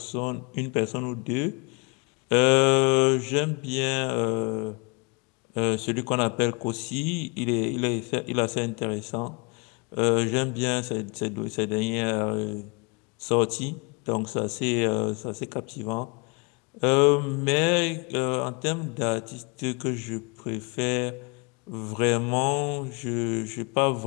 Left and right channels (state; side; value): quieter; right; 30.6 dB